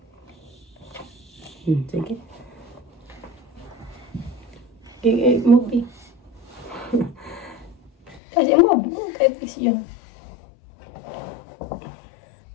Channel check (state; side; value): drops out; right; at 8.2 s